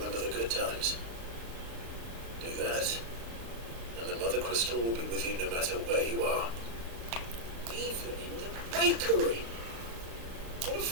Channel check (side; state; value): left; late; 35 ms